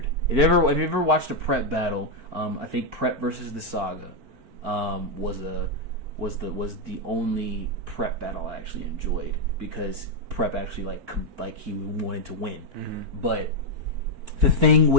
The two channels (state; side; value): late; left; 4.4 ms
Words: If you ever watched a Prep battle, I think Prep versus the Saga was was the only prep battle I actually enjoyed, because prep actually like he wanted to win. Mm-hmm. But the thing